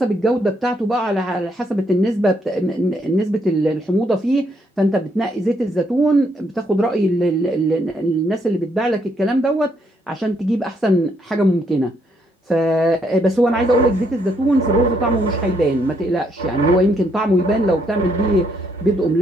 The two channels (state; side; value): normal; both; correlation 0.73